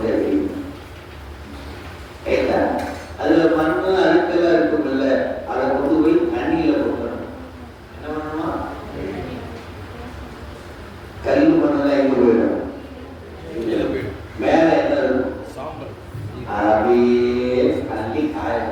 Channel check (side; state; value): both; identical; correlation 1.00